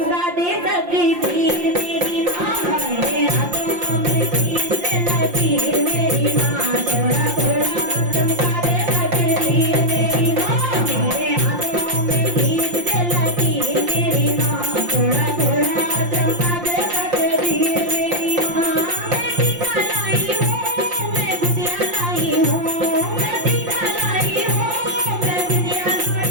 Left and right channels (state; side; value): late; left; 5.7 ms